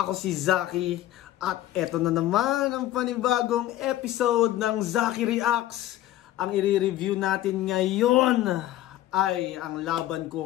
si Zaki at eto na naman ang panibagong episode ng Zaki Reacts. Ang i-review natin ngayon ay ang laban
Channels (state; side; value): quieter; right; 14.0 dB